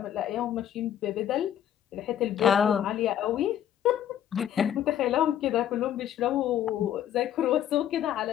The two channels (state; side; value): quieter; right; 10.6 dB